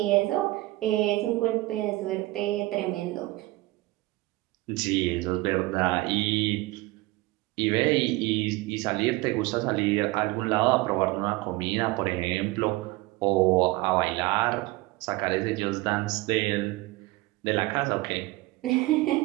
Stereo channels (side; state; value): left; quieter; 20.3 dB